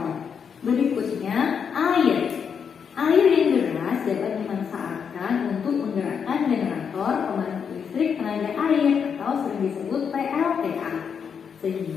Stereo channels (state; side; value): quieter; right; 6.9 dB